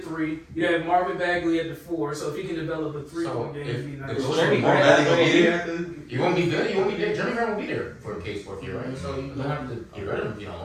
You have Marvin Bagley at the 4. So if he can develop a 3-point game, it'd be nice. You won't be good. You won't be there. Jeremy Grant will be there for Cade's 4th year, right? So you don't have to get rid of him if you don't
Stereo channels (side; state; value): both; identical; correlation 1.00